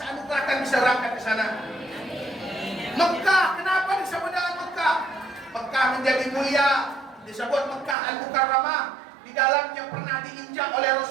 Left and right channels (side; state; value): left; drops out; at 8.0 s